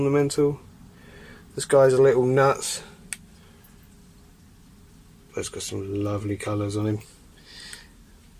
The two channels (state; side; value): identical; both; correlation 1.00